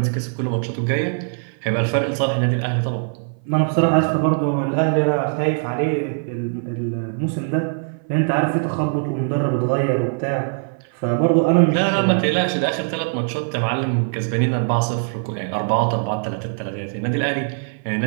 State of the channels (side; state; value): left; silent; 57 dB below the other